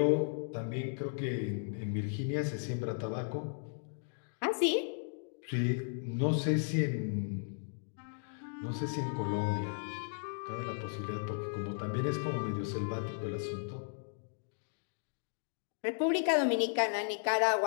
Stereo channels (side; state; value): right; silent; digital silence